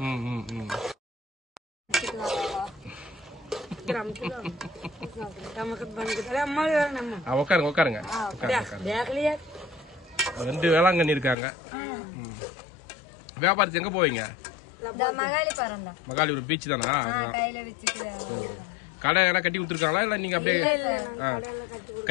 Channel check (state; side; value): drops out; right; at 11.4 s